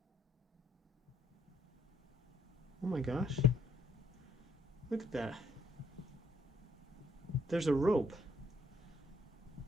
Oh my gosh. Look at that. There's a rope.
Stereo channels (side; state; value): both; normal; correlation 0.70